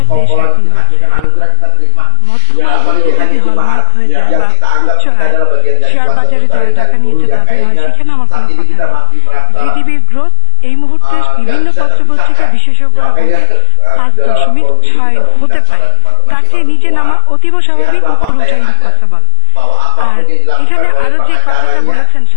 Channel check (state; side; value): different; both; correlation 0.00